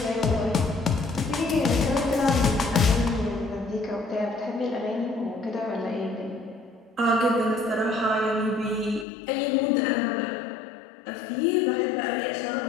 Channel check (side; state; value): right; drops out; at 9.1 s